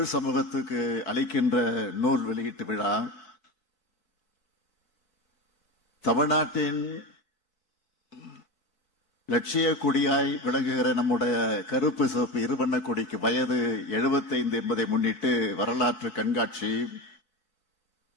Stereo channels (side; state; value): right; late; 4.6 ms